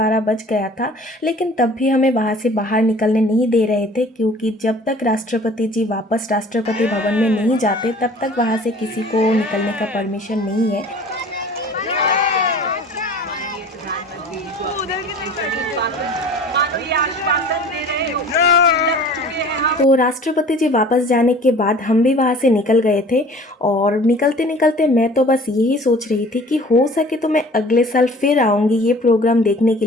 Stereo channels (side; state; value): both; normal; correlation 0.47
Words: बज गया था, लेकिन तब भी हमें वहाँ से बाहर निकलने नहीं दे रहे थे, क्योंकि जब तक राष्ट्रपति जी वापस राष्ट्रपति भवन में नहीं जाते तब तक वहाँ से किसी को निकलने का परमिशन नहीं है। मानो ये आश्वासन दे रहे हो। तो राष्ट्रपति जी वापस जाने के बाद हम भी वहाँ से निकल गए थे और निकलते निकलते मैं तो बस यही सोच रही थी कि हो सके तो मैं अगले साल फिर आऊँगी ये प्रोग्राम देखने के